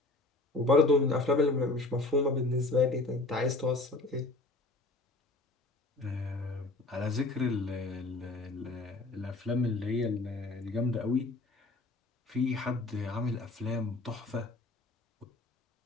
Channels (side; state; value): right; quieter; 3.1 dB